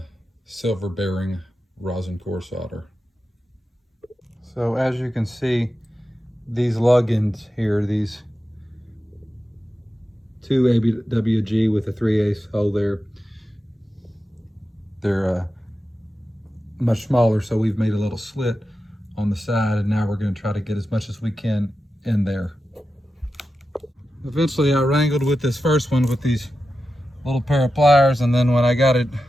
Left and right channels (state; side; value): normal; both; correlation 0.91